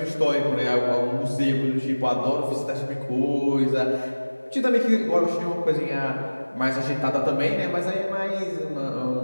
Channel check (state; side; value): inverted; both; correlation -1.00